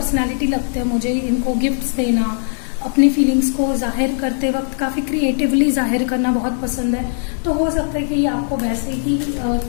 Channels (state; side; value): silent; right; 67 dB below the other